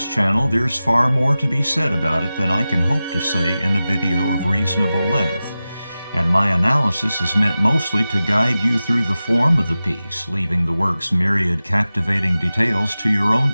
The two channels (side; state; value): both; inverted; correlation -0.95